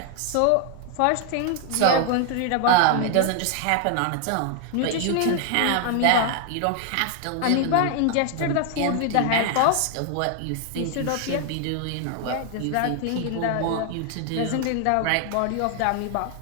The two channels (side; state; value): both; different; correlation 0.00